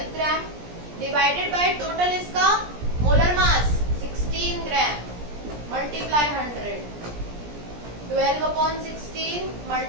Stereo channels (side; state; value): left; late; 17 ms